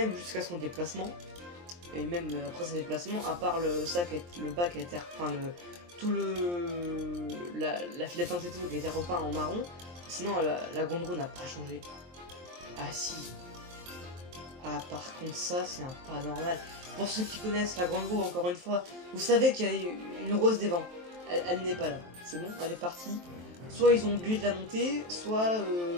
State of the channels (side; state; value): left; late; 23 ms